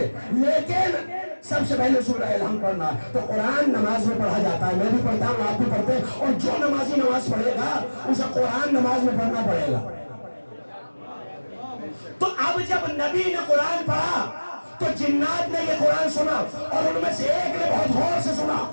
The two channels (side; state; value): both; inverted; correlation -1.00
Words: لیکن سب سے پہلے سورہ الحمد پڑھنا ہے. تو قرآن نماز میں پڑھا جاتا ہے, میں بھی پڑھتا ہوں, آپ بھی پڑھتے ہیں, اور جو نمازی نماز پڑھے گا اسے قرآن نماز میں پڑھنا پڑے گا. تو اب جب نبی نے قرآن پڑھا تو جنات نے یہ قرآن سنا, اور ان میں سے ایک نے بہت غور سے سنا,